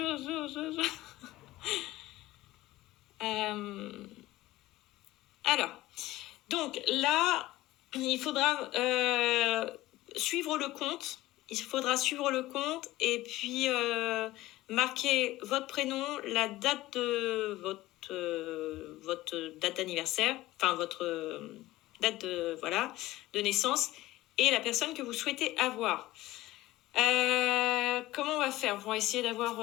Alors, donc là, il faudra suivre le compte. Il faudra suivre le compte et puis marquer votre prénom, la date de votre date d'anniversaire, enfin votre date de naissance et la personne que vous souhaitez avoir. Comment on va faire? On va essayer d'avoir...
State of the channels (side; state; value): right; quieter; 17.2 dB